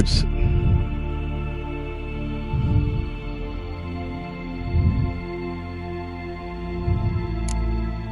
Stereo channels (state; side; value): identical; both; correlation 1.00